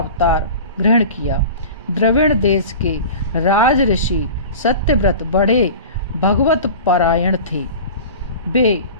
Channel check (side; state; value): both; inverted; correlation -0.36